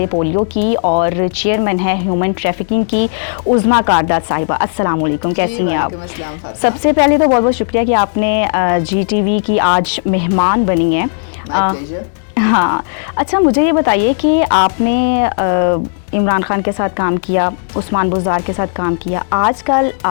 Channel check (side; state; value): right; silent; digital silence